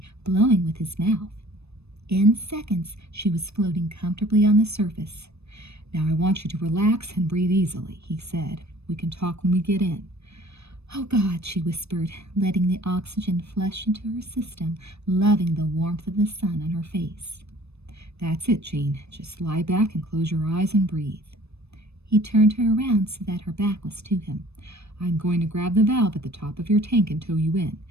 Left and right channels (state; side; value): late; left; 0.79 ms